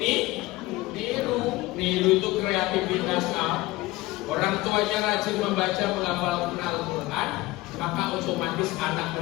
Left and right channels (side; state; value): right; quieter; 19.3 dB